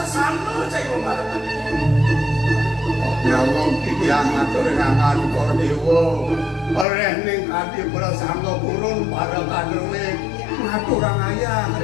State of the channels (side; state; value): right; drops out; at 6.9 s